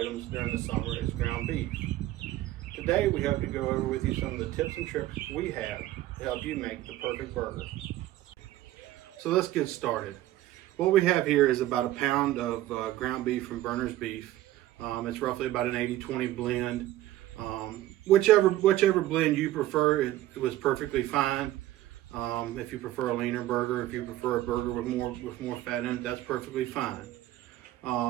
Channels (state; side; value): quieter; left; 14.8 dB